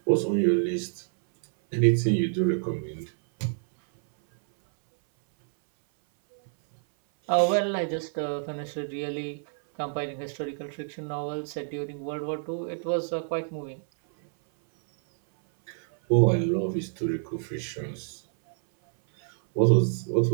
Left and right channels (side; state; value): left; silent; 59 dB below the other